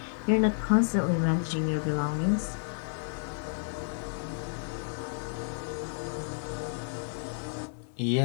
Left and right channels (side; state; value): right; silent; digital silence